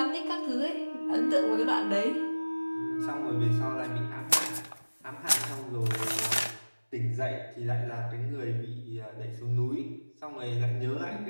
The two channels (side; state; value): both; inverted; correlation -1.00